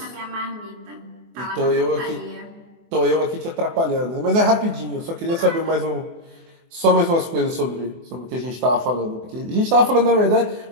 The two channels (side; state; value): left; late; 24 ms